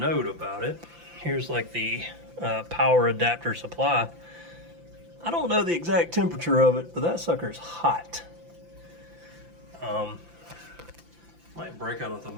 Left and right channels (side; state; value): left; late; 5.8 ms